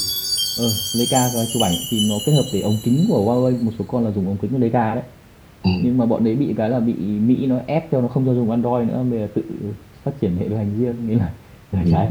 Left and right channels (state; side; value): identical; both; correlation 1.00